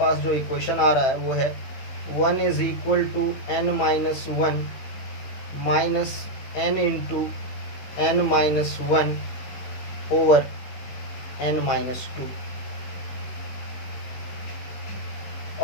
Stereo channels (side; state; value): right; late; 15 ms